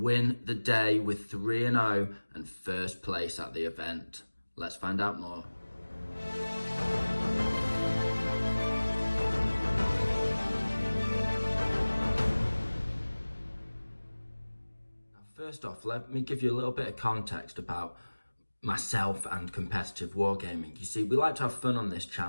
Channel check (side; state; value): both; inverted; correlation -1.00